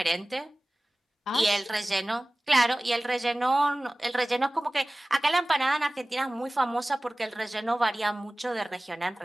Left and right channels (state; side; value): normal; both; correlation 0.98